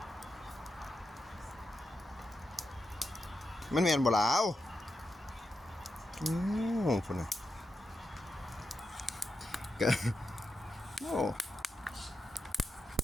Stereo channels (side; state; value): both; normal; correlation 0.87